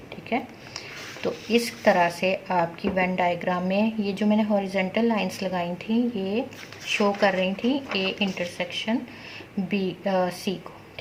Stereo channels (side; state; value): both; identical; correlation 1.00